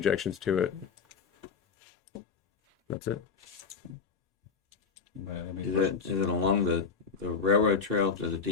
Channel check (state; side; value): quieter; right; 5.3 dB